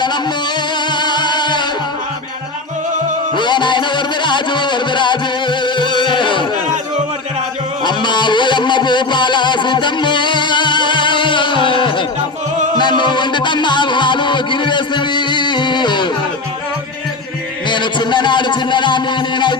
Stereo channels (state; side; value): quieter; right; 3.3 dB